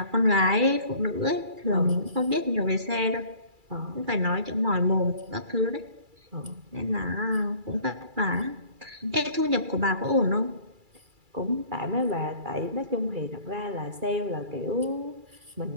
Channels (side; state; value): left; late; 2.3 ms